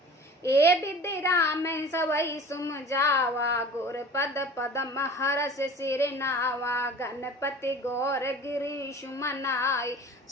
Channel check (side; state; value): both; normal; correlation 0.41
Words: ए विद्य राम सबई सुम जावा, गुर पद पदम हरस सिर नावा। गणपति गौर गिरीश मनाई,